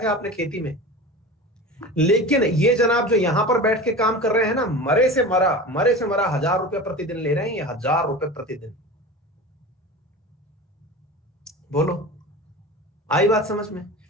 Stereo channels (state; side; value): normal; both; correlation 0.32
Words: थे आपने खेती में। लेकिन ये जनाब जो यहां पर बैठ के काम कर रहे हैं ना, मरे से मरा 1000 रुपए प्रतिदिन ले रहे हैं, ये 1000 रुपए प्रतिदिन। बोलो, आई बात समझ में।